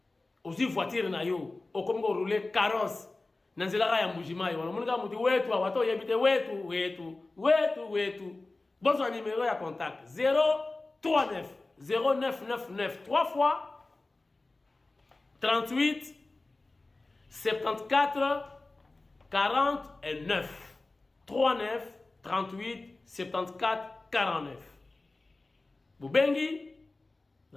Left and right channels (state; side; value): quieter; right; 3.2 dB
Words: aussi voiture na yo okomi ko rouler carrosse na nzela ya Mbujimai wana munika muti wetu awato yebite wetu bonsoir numéro ya contact 039 0999 3 fois 38 74 49 39 38 74 49 Bubengi